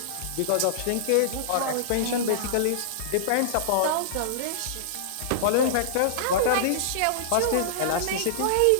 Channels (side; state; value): both; different; correlation -0.02